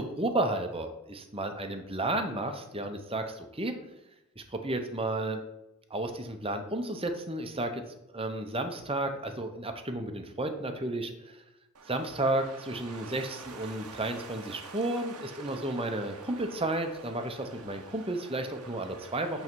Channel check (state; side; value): normal; both; correlation 0.37